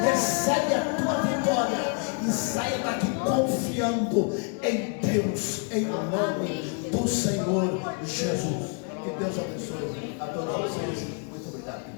recebe a tua vitória e saia daqui confiando em Deus, em nome do Senhor Jesus. Que Deus abençoe a todos vocês. Muito obrigado.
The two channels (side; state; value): right; quieter; 37.1 dB